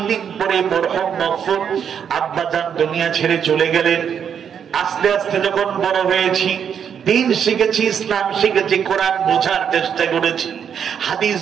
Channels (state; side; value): quieter; left; 7.9 dB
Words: দিন পরে মরহুম মকফুর আব্বাজান দুনিয়া ছেড়ে চলে গেলেন। আস্তে আস্তে যখন বড় হয়েছি, দিন শিখেছি, ইসলাম শিখেছি, কোরআন বোঝার চেষ্টা করেছি, হাদিস